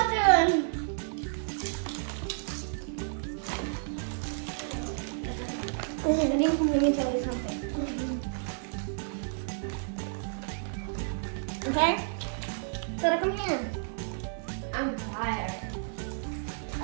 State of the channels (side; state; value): left; silent; digital silence